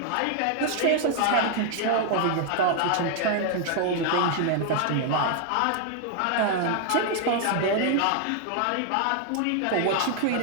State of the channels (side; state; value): both; different; correlation 0.00